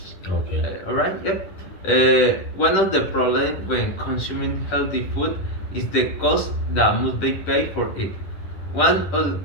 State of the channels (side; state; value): right; late; 10 ms